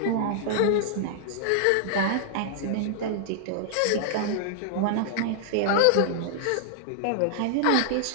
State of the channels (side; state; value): both; different; correlation -0.01